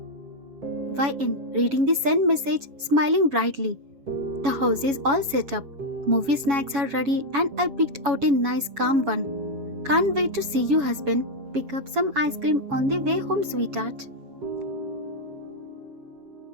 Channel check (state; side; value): late; left; 7.2 ms